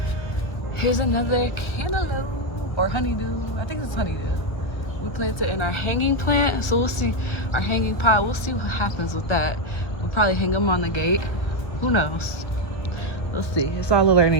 Here's another cantaloupe or honeydew. I think it's honeydew. We planted in our hanging plant, so we'll see. Our hanging pot, we'll see what happens with that. We'll probably hang them on the gate. Who knows? We'll see. It's all a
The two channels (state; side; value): late; right; 1.4 ms